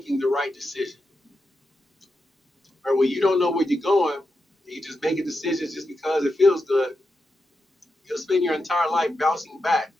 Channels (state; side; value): normal; both; correlation 0.87